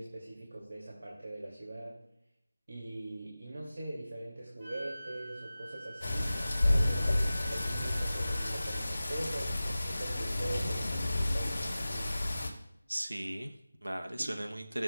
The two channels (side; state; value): both; inverted; correlation -0.96